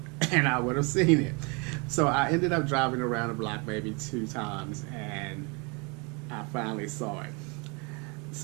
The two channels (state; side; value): quieter; left; 31.3 dB